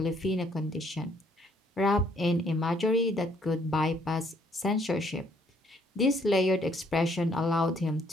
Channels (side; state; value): both; normal; correlation 0.66